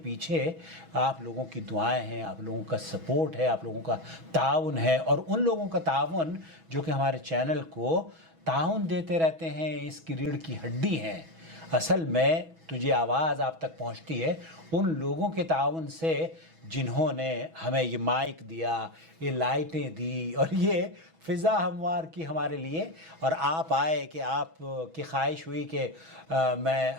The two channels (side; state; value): left; late; 6.2 ms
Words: پیچھے آپ لوگوں کی دعائیں ہیں، آپ لوگوں کا سپورٹ ہے، آپ لوگوں کا تعاون ہے، اور ان لوگوں کا تعاون جو کہ ہمارے چینل کو تعاون دیتے رہتے ہیں، اس کی ریڑھ کی ہڈی ہیں۔ اصل میں تجھے آواز آپ تک پہنچتی ہے ان لوگوں کے تعاون سے جنہوں نے ہمیں یہ مائک دیا، یہ لائٹیں دی، اور یہ فضا ہموار کی ہمارے لیے، اور آپ آئے کہ آپ کی خواہش ہوئی کہ میں